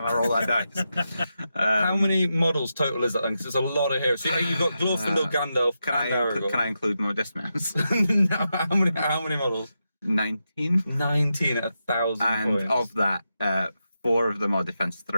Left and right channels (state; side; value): inverted; both; correlation -0.87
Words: I roll that dice. How many models total is that then? Because there's a lot of heroes. So you've got Glorfindel, Gandalf, Can and Aragorn. I include my dismounts? No, how many models? 19. 19 at 1,000 And points. of that, 4 of them are defense